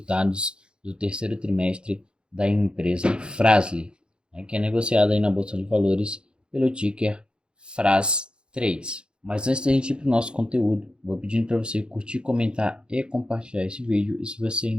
do terceiro trimestre da empresa Fras-le, né, que é negociada aí na Bolsa de Valores pelo ticker FRAS3. Mas antes da gente ir para o nosso conteúdo, vou pedindo para você curtir, comentar e compartilhar esse vídeo. E se você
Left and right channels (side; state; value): left; late; 0.051 ms